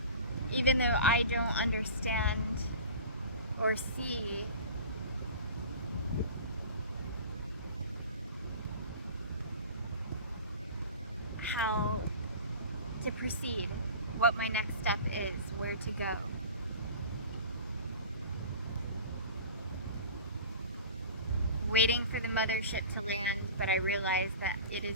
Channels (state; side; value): inverted; both; correlation -0.39